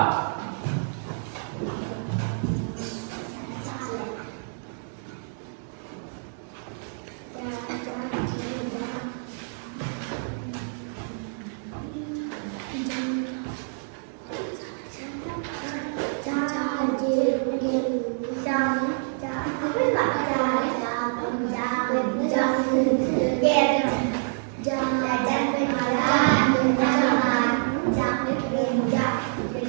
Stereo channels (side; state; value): left; silent; digital silence